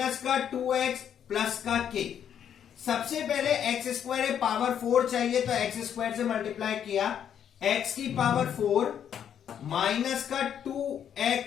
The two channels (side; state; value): right; quieter; 9.0 dB